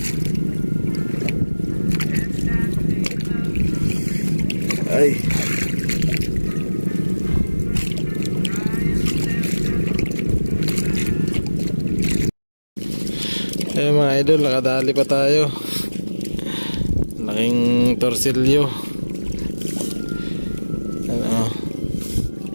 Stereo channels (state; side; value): inverted; both; correlation -1.00